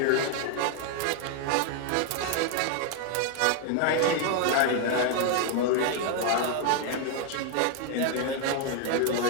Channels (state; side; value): different; both; correlation 0.01